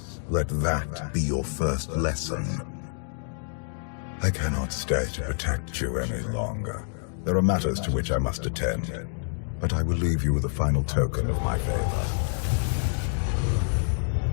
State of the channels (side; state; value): right; silent; digital silence